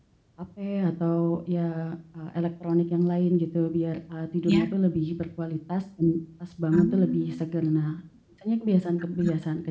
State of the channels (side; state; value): both; identical; correlation 1.00